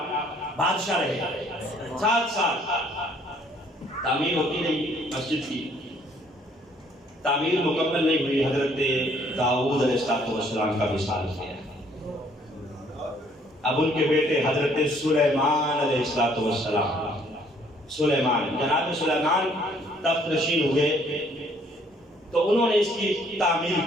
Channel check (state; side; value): normal; both; correlation 0.63